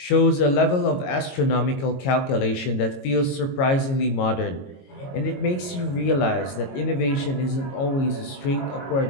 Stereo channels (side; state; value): right; late; 22 ms